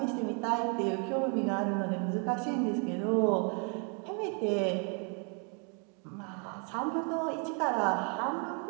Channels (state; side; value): quieter; left; 37.9 dB